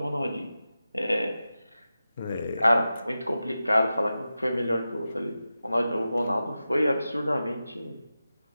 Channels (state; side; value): inverted; both; correlation -0.93